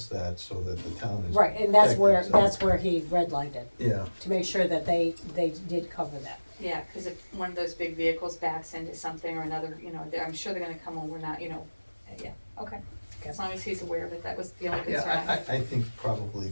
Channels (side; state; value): both; inverted; correlation -1.00